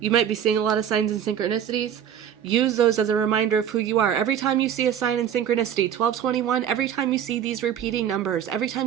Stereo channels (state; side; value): quieter; left; 9.3 dB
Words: might be seeing a lot of signs and synchronicities. Use those as a reminder of who you are. Every time you see a sign in synchronicity, 1221, every time you see these repeating numbers, every